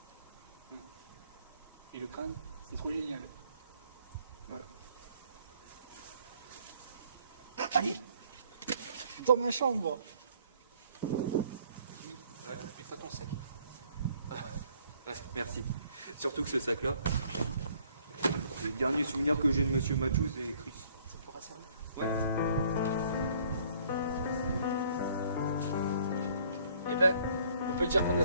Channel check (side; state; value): both; inverted; correlation -0.61